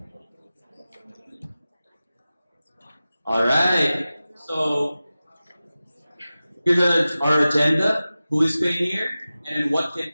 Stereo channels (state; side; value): inverted; both; correlation -0.96